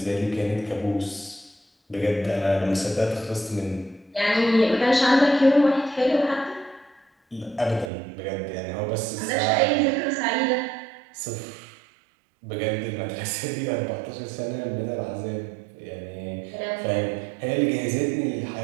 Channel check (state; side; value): drops out; left; at 7.9 s